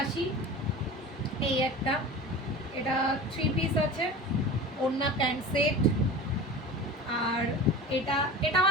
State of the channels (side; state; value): both; normal; correlation 0.34